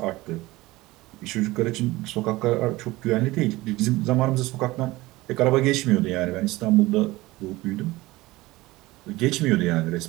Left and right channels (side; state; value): left; quieter; 19.6 dB